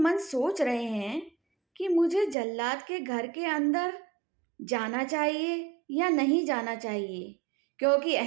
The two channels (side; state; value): left; drops out; at 2.4 s